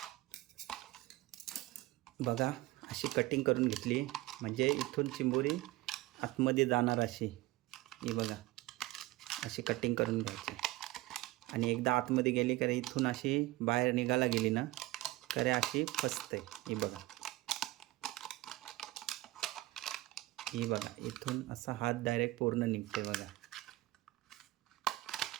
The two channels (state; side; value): quieter; left; 18.6 dB